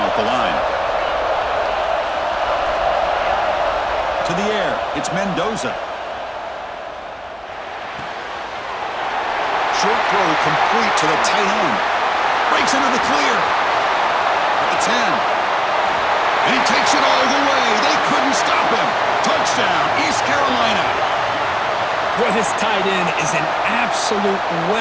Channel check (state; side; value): identical; both; correlation 1.00